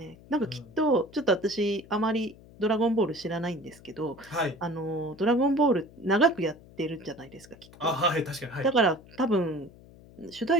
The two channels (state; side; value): noise; left; hum, 22 dB below the sound